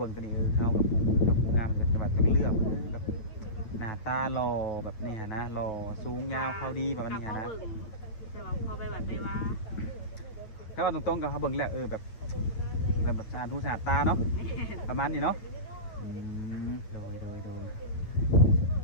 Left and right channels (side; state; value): right; late; 8.7 ms